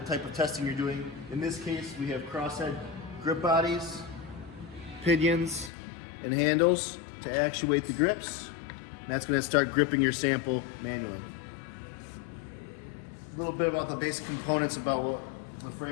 type of testing you're doing. In this case, we have crosshead grip bodies, pinions, and handles to actuate the grips. And that's going to start gripping your sample manually. A little bit about the basic components about what the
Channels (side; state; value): right; drops out; at 5.7 s